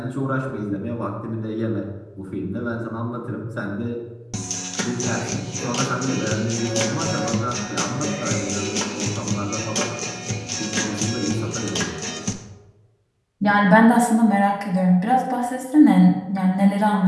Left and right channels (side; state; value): both; identical; correlation 1.00